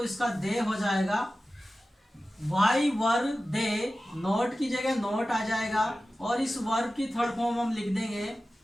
इसका दे हो जाएगा वाई वर दे, नोट की जगह नोट आ जाएगा, और इस वर्ब की थर्ड फॉर्म हम लिख देंगे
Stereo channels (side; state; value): both; normal; correlation 0.95